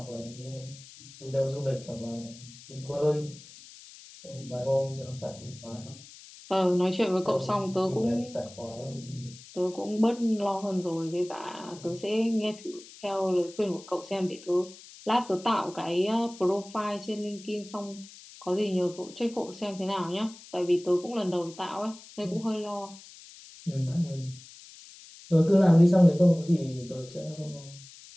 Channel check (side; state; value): left; noise; hiss, 19 dB below the sound